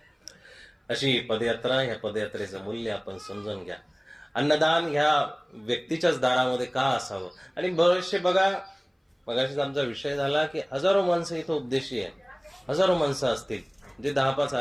अशी पदयात्रा, ह्या पदयात्रेचं मूल्य आपण समजून घ्या. अन्नदान ह्या व्यक्तीच्याच दारामध्ये का असावं. आणि बरेचसे बघा, मगाशीच आमचा विषय झाला की हजारो माणसं इथं उपदेशी आहे. हजारो माणसं असतील, जे 10-5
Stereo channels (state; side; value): identical; both; correlation 1.00